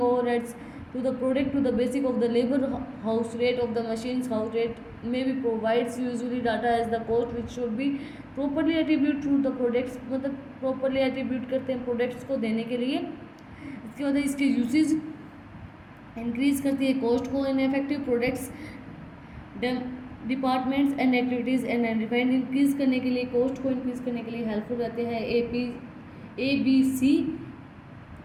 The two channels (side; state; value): both; identical; correlation 1.00